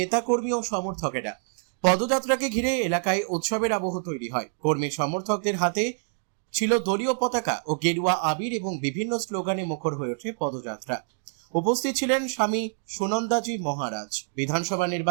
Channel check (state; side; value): silent; left; 61 dB below the other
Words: ও সমর্থকেরা। পদযাত্রাকে ঘিরে এলাকায় উৎসবের আবহ তৈরি হয়। কর্মী সমর্থকদের হাতে ছিল দলীয় পতাকা ও গেরুয়া আবির এবং বিভিন্ন স্লোগানে মুখর হয়ে ওঠে পদযাত্রা। উপস্থিত ছিলেন স্বামী সুনন্দাজি মহারাজ, বিধানসভা